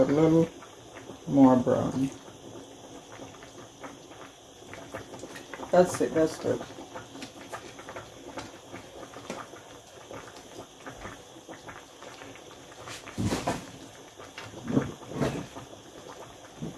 little more brown. That's it, that's good.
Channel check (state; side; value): identical; both; correlation 1.00